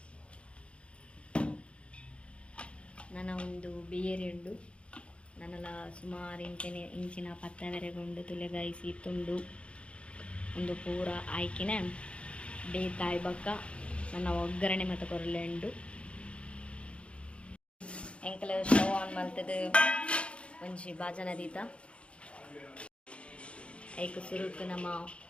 ನನ್ನ ಒಂದು ಬೇರೆಂಡು ನನ್ನಲ ಸುಮಾರು ಇಂಚಿನ ಪತ್ತವೆರೆಗೊಂಡು ತುಲೆಗಾಯಿಸಿ ತುಂಡು ಒಂದು ಪೂರ ಆಯ್ಕಿನ ಬೇತಾಯಿ ಬಕ್ಕ ನನ್ನ ಒಗ್ಗರಣೆ ಮತ್ತು ಕೊರಲೆಂಡು ಎಂಕಲ ಸ್ಟವ್ ಆನ್ ಮಾಡ್ತದೆ ಒಂಜಿ ಬಾಜನ ದೀತ ಐಕು ಸುರುಕು ನಮ್ಮ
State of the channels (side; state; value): right; late; 0.059 ms